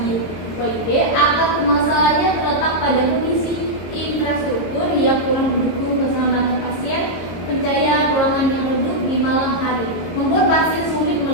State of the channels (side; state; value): right; late; 23 ms